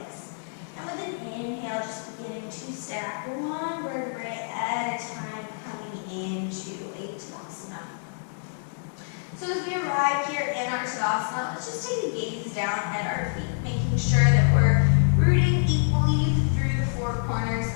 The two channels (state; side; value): silent; right; digital silence